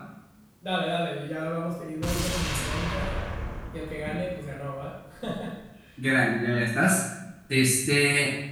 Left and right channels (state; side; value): identical; both; correlation 1.00